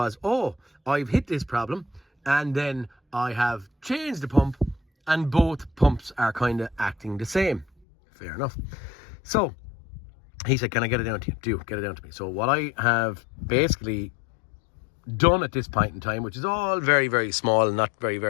oh, I've hit this problem and then I have changed the pump and both pumps are kind of acting the same. Fair enough. So he said, can I get it down to you? Do get it down to me. So what I have basically done at this point in time, which is all very, very small and not very,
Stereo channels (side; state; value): right; drops out; at 7.7 s